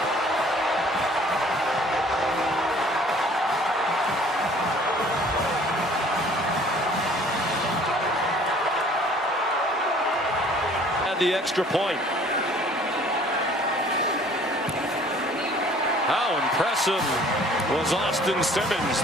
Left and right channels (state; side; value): normal; both; correlation 0.53